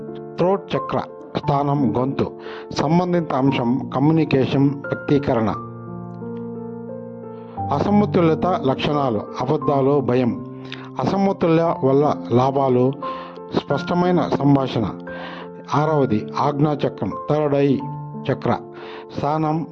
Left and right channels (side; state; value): both; identical; correlation 1.00